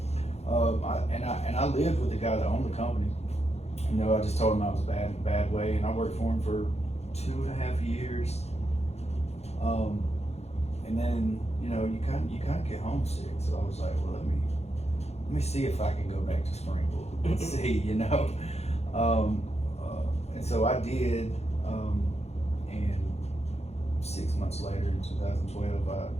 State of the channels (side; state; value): right; late; 0.31 ms